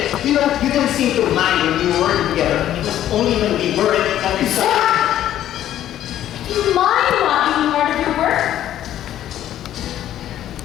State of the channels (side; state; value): right; quieter; 11.9 dB